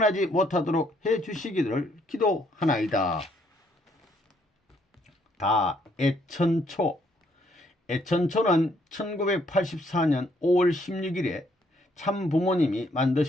못하도록 해주시기를 기도하나이다. 다 애천초. 애천초는 1984년 5월 16일에 참부모님이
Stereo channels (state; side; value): normal; both; correlation 0.69